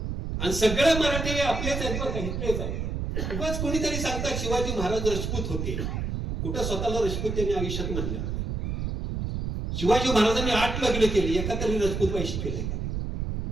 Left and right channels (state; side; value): noise; right; rumble, 3 dB below the sound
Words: आणि सगळे मराठी आपलेच आहेत बरं का, इथलेच आहेत. उगाच कोणीतरी सांगतात शिवाजी महाराज राजपूत होते. कुठं स्वतःला राजपूत त्यांनी आयुष्यात म्हणले नाही. शिवाजी महाराजांनी 8 लग्न केली, एका तरी राजपूत पैसे केले का?